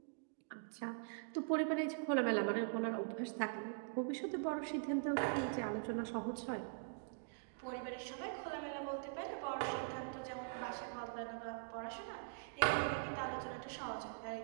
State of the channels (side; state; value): left; silent; digital silence